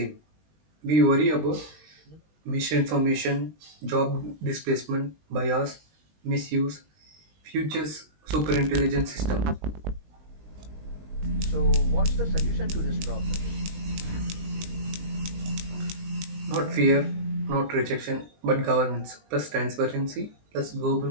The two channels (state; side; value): late; left; 20 ms